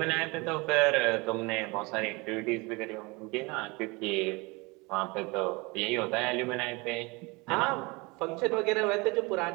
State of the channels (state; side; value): quieter; left; 26.0 dB